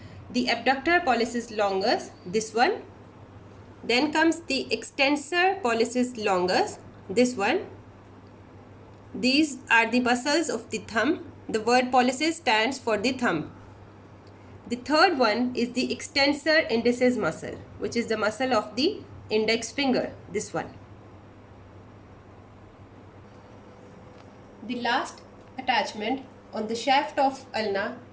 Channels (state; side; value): identical; both; correlation 1.00